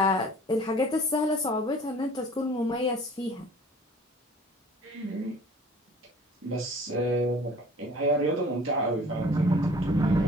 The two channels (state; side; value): normal; both; correlation 0.49